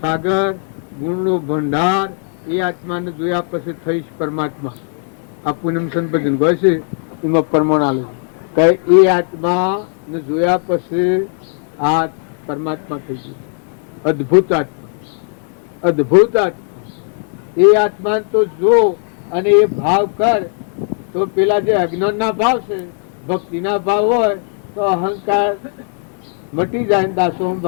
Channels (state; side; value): silent; right; 56 dB below the other